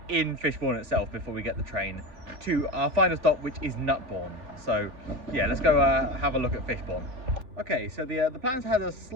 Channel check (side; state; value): left; late; 3.4 ms